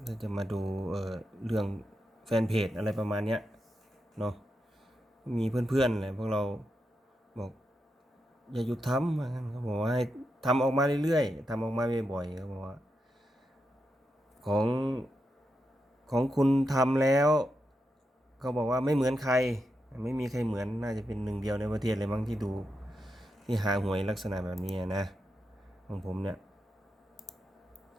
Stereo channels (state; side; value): normal; both; correlation 0.86